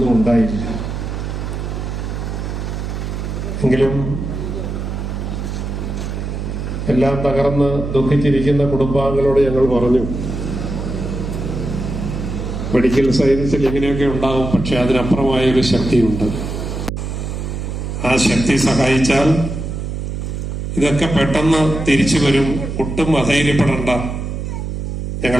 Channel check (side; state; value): right; noise; hum, 4 dB below the sound